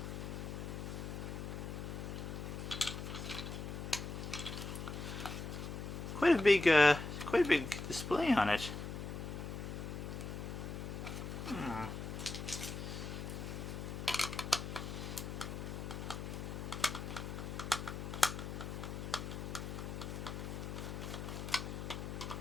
Quite a big display on it.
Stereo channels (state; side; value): noise; left; hum, 5 dB below the sound